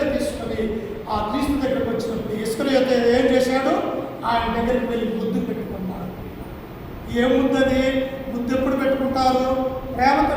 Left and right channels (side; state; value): both; identical; correlation 1.00